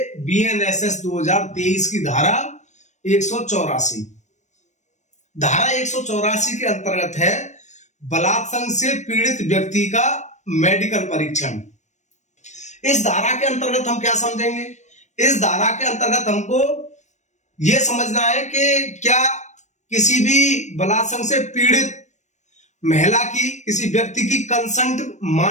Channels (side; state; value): right; late; 0.34 ms